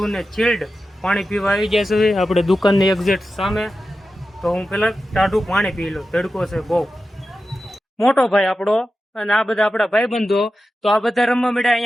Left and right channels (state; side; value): normal; both; correlation 0.92